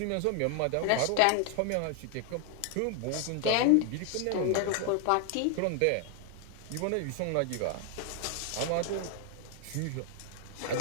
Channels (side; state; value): both; different; correlation 0.00